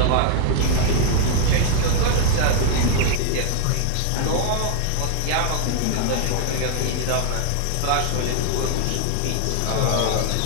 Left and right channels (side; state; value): both; different; correlation 0.00